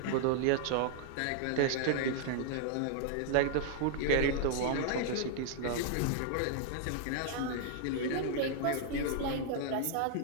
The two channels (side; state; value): both; different; correlation -0.01